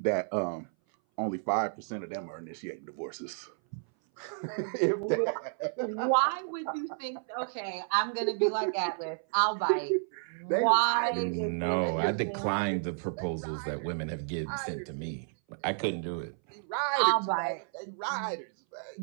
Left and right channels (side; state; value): left; silent; 57 dB below the other